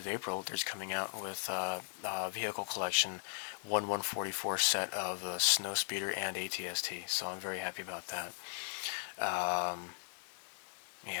April, there's coming out with a vehicle collection 1/144 set of Snowspeeder and ATST. So I'm very happy about that.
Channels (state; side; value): silent; right; digital silence